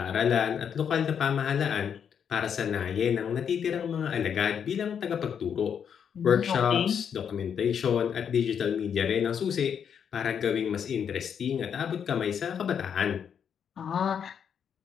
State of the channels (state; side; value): quieter; right; 7.8 dB